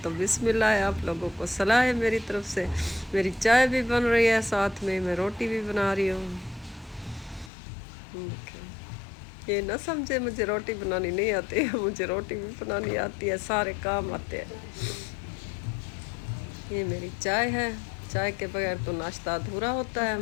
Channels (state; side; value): drops out; right; at 7.5 s